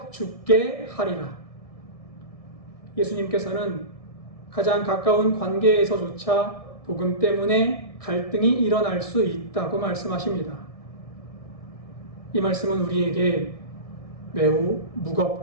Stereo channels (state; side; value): late; right; 1.6 ms